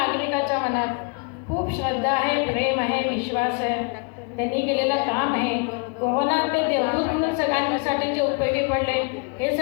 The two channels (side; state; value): right; quieter; 33.8 dB